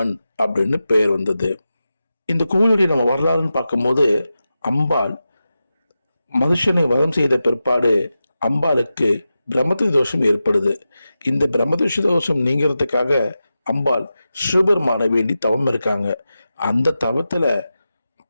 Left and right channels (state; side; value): inverted; both; correlation -0.92